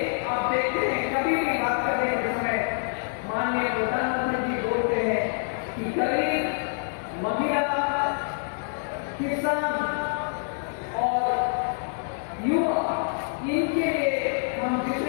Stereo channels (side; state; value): right; silent; 61 dB below the other